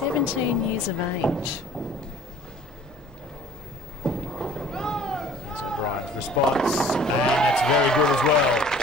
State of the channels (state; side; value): normal; both; correlation 0.50